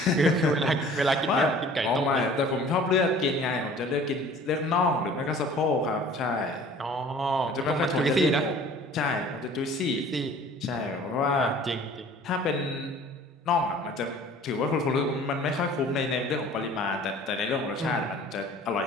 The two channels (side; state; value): both; normal; correlation 0.48